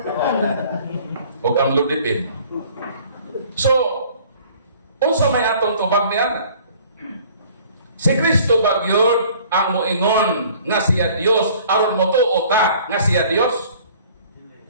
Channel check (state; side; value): inverted; both; correlation -0.53